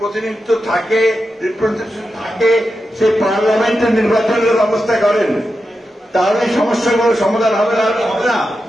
থাকে, রিপ্রেজেন্টেশন থাকে, সেই পার্লামেন্টের নির্বাচনের ব্যবস্থা করেন, তাহলে সমস্যাগুলো সমাধান হবে না। হবে না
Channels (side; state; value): both; normal; correlation 0.89